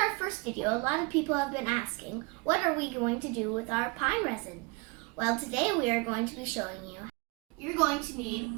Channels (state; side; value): quieter; left; 27.8 dB